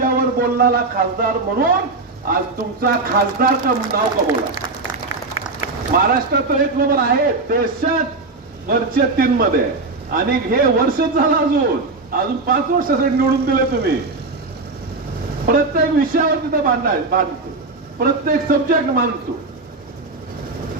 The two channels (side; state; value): left; quieter; 3.6 dB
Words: बोलणारा खासदार म्हणून आज तुमचा खासदार का नाव कमवला. महाराष्ट्रात 1 नंबर आहे, देशात वरच्या 3 मध्ये. आणि हे वर्षच झालं, अजून 5 वर्षासाठी निवडून दिले तुम्ही. प्रत्येक विषयावर तिथं बांधतो, प्रत्येक सब्जेक्ट मांडतो.